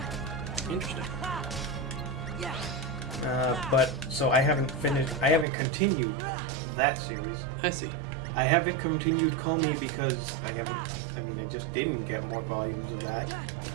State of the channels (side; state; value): left; drops out; at 5.5 s